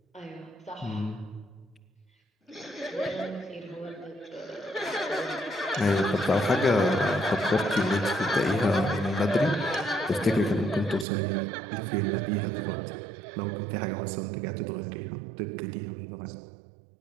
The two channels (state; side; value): drops out; left; at 11.1 s